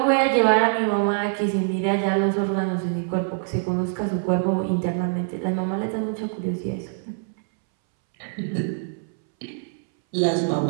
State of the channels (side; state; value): left; silent; 63 dB below the other